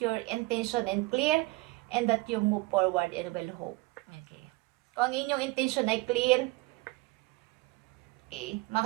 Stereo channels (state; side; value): quieter; left; 21.6 dB